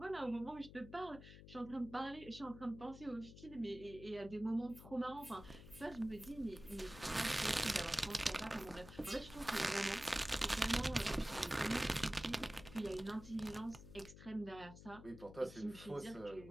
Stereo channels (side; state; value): left; noise; hum, 15 dB below the sound